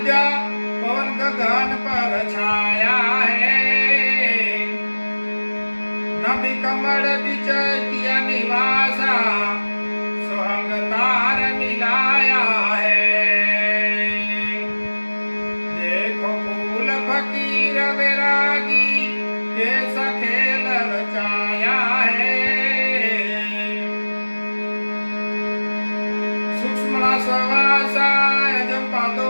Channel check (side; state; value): both; inverted; correlation -1.00